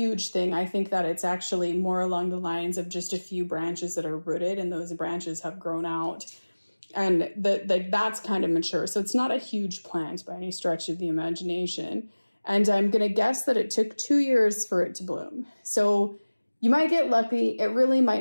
thing. I think that it's actually more along the lines of just a few branches that are rooted, and those branches have grown out. And that's kind of mature. So it's not a huge plant by any stretch of the imagination. And I'm going to guess that it took 2 years for it to bloom. So you might get lucky. It really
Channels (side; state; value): both; inverted; correlation -1.00